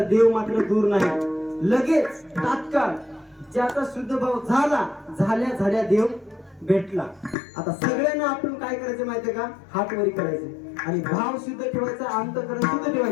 देव मात्र दूर नाही. लगेच तात्काळ ज्याचा शुद्ध भाव झाल्या देव भेटला. आता सगळ्यांना आपण काय करायचं माहितीये का? हात वरी करायचे आणि भाव शुद्ध ठेवायचा, अंतःकरण शुद्ध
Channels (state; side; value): drops out; right; at 7.4 s